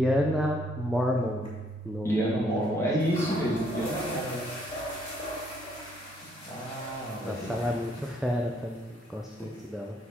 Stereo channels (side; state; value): both; normal; correlation 0.68